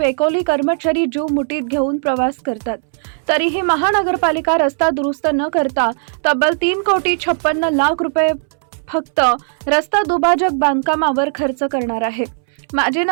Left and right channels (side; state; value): left; silent; 68 dB below the other